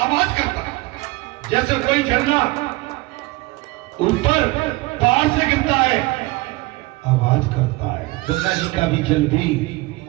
करता है, जैसे कोई झरना ऊपर पहाड़ से गिरता है आवाज करता है। गंगा जी का भी जल भी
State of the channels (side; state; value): left; quieter; 21.5 dB